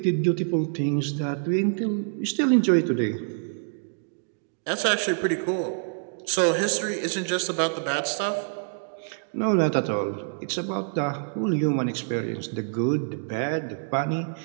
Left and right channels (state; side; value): silent; left; digital silence